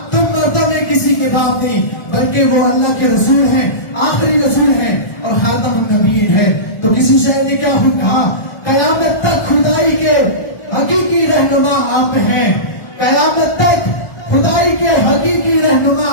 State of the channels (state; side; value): late; right; 1.2 ms